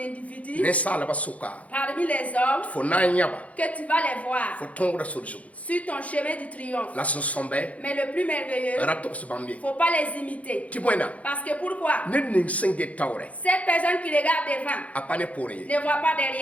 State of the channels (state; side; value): late; right; 0.067 ms